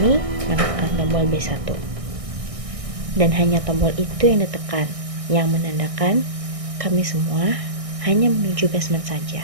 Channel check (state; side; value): late; left; 1.6 ms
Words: menekan tombol B1. Dan hanya tombol itu yang ditekan, yang menandakan kami semua hanya menuju basement saja.